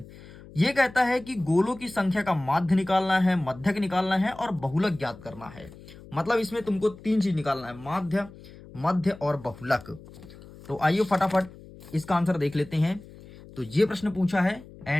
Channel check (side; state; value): left; noise; hum, 19 dB below the sound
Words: ये कहता है कि गोलों की संख्या का माध्य निकालना है, मध्यक निकालना है और बहुलक ज्ञात करना है। मतलब इसमें तुमको 3 चीज निकालना है, माध्य, मध्य और बहुलक। तो आइए फटाफट इसका आंसर देख लेते हैं। तो ये प्रश्न पूछा है